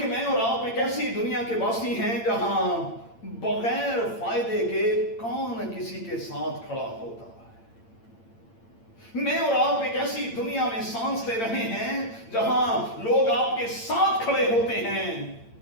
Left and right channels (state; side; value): late; right; 8.8 ms